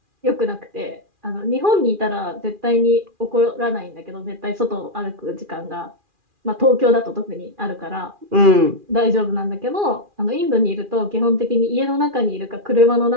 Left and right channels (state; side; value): late; left; 2.4 ms